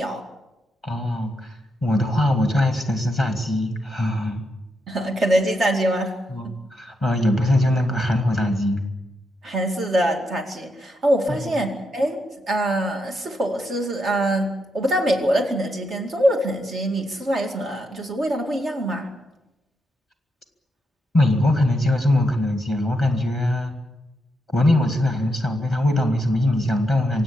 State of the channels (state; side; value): normal; both; correlation 0.82